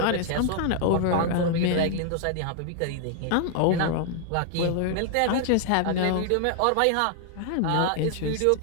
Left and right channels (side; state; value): both; different; correlation 0.00